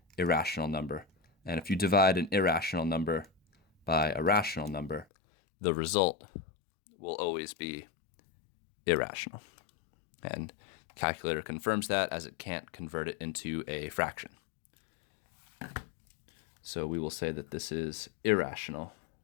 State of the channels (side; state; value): right; drops out; at 5.1 s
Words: irrational number. And if you divide an irrational number by a rational number, the result will always be irrational. And the calculator confirms that, as it can't convert it into a fraction. So we will say that this is irrational.